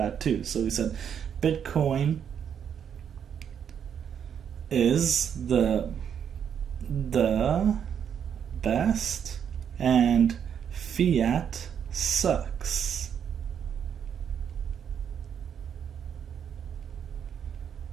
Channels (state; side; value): quieter; left; 8.2 dB